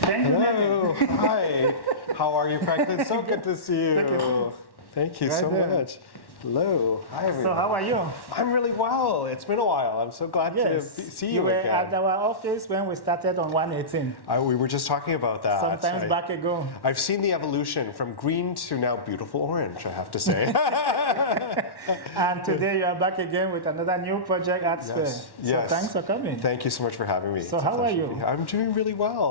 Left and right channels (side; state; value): right; late; 1.1 ms